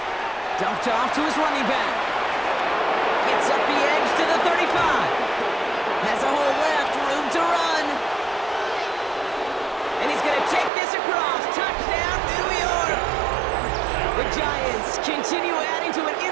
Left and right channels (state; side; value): drops out; left; at 10.7 s